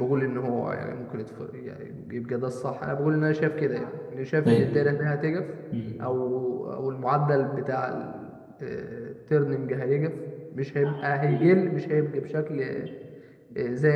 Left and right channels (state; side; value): identical; both; correlation 1.00